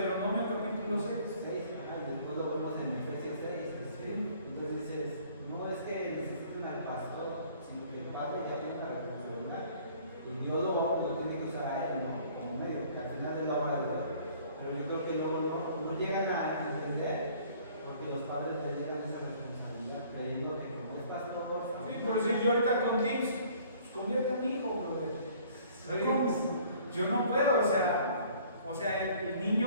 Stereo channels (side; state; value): both; inverted; correlation -0.55